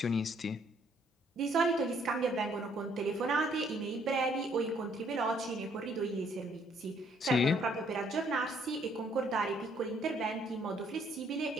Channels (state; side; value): normal; both; correlation 0.66